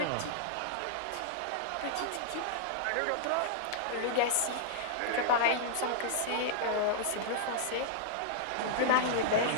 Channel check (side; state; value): both; different; correlation -0.02